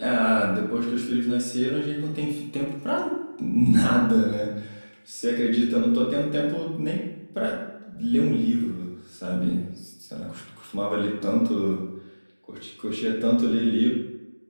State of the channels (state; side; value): inverted; both; correlation -1.00